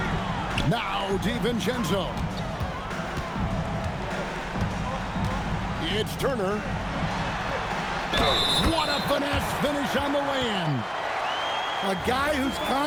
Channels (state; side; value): identical; both; correlation 1.00